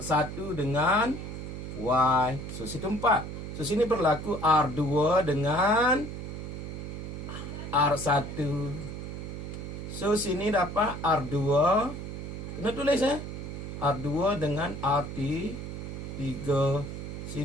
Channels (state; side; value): noise; right; hum, 7 dB below the sound